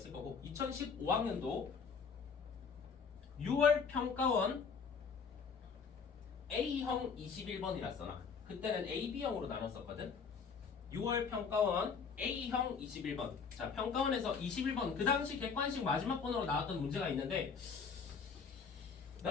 거고 2015학년도 6월 평가원 A형 21번이라 써놔. 그때는 A, B형으로 나눴었거든. 6월 평가원 A형 21번. 자, 평가원에서 21번 그 당시 객관식 마지막 번호로 나왔던 문제가 있는데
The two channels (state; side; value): quieter; right; 5.8 dB